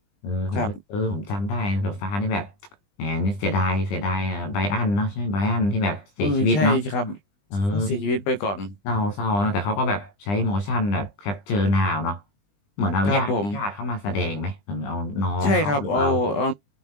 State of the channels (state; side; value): late; right; 20 ms